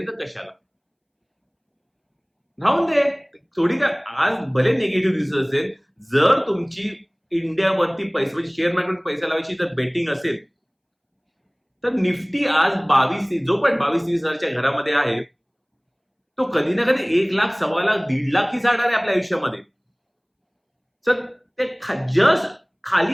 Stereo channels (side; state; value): both; identical; correlation 1.00